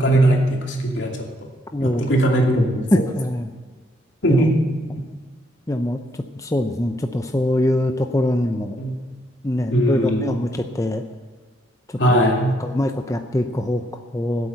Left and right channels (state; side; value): normal; both; correlation 0.73